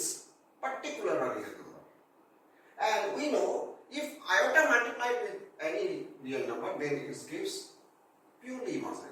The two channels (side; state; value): both; identical; correlation 1.00